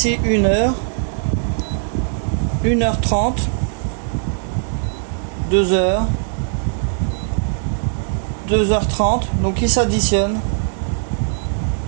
1 heure, 1h30, 2 heures, 2h30, donc il s'additionne.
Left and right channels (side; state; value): left; silent; digital silence